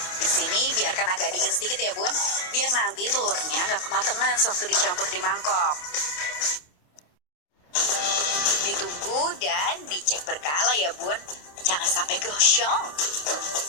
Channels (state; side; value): late; right; 28 ms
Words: Di sini biarkan agak dingin sedikit ya bun, biar nanti telurnya nggak kematangan sewaktu dicampur di mangkok. Ditunggu dan dicek berkala ya bun, jangan sampai gosong.